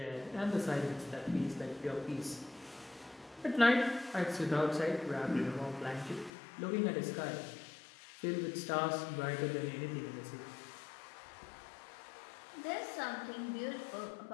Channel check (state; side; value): drops out; right; at 6.3 s